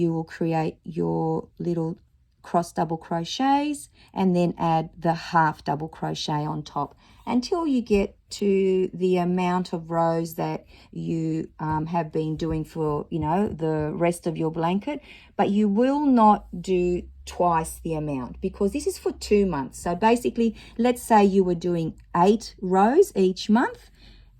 will create your little cross double crochets and then add the half double crochet on top until you get to the amount of rows that you have been doing for, you know, the rest of your blanket. But you will not do twice the amount because this is for 2 months. So basically, let's say you were doing 8 rows each month.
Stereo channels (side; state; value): both; identical; correlation 1.00